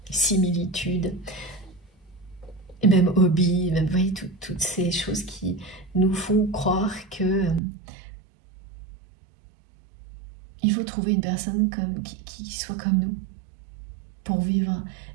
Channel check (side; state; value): left; drops out; at 7.6 s